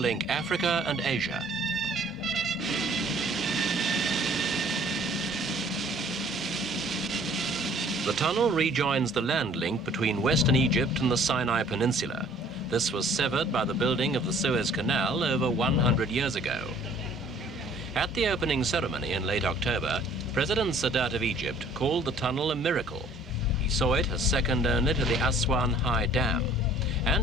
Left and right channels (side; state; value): both; normal; correlation 0.55